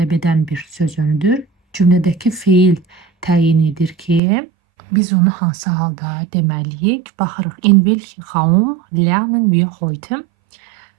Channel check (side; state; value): left; drops out; at 4.2 s